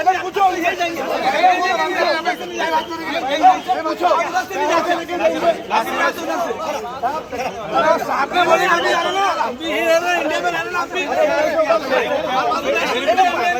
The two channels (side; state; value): both; identical; correlation 1.00